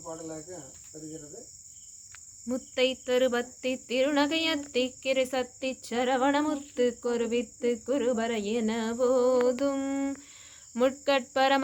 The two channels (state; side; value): identical; both; correlation 1.00